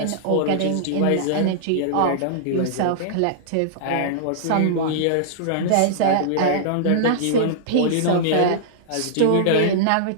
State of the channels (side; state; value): both; different; correlation -0.02